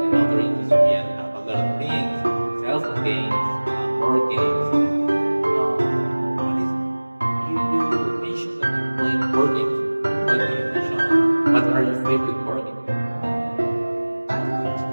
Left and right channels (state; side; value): inverted; both; correlation -1.00